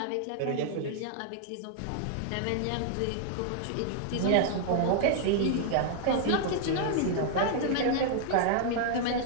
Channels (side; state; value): both; different; correlation -0.01